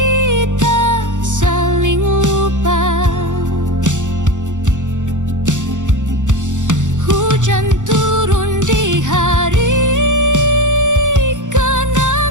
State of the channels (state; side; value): late; left; 0.86 ms